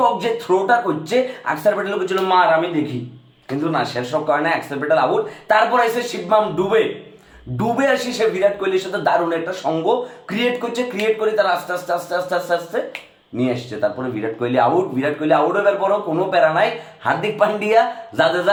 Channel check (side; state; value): both; identical; correlation 1.00